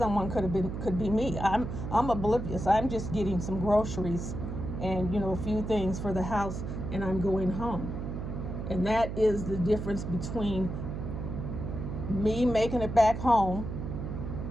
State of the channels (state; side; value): noise; right; hum, 5 dB below the sound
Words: could be me. I'm oblivious. I'm just getting some groceries and a few things for the house, and I'm going home. And that is the difference between me making it back home,